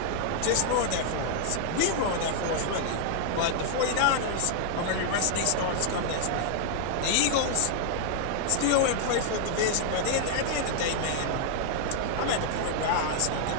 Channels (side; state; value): both; different; correlation 0.00